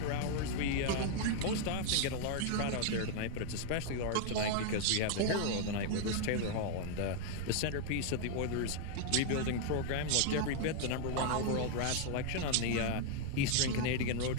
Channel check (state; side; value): different; both; correlation 0.00